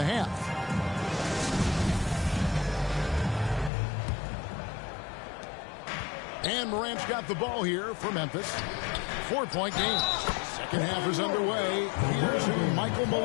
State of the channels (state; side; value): drops out; right; at 3.7 s